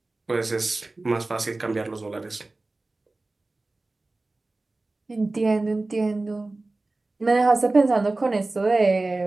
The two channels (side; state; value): left; quieter; 3.1 dB